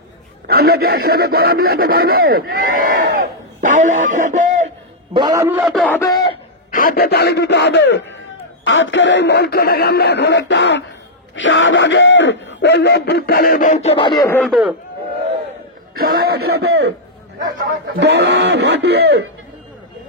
আমরা কি একসাথে গলা মিলাতে পারবো? তাহলে একসাথে গলা মিলাতে হবে, হাতে তালি দিতে হবে। আজকের এই মঞ্চটাকে আমরা এখন একটা শাহবাগের ওই অভ্যুত্থানের মঞ্চ বানিয়ে ফেলবো। সবাই একসাথে গলা ফাটিয়ে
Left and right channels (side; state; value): both; normal; correlation -0.07